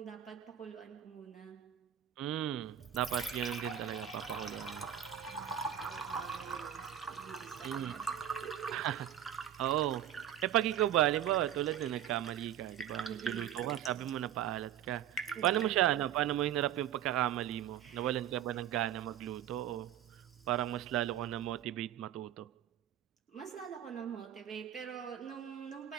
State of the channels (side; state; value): left; quieter; 10.8 dB